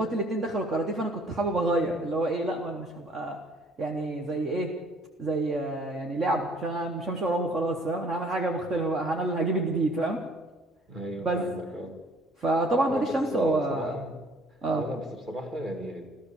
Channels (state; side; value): normal; both; correlation 0.58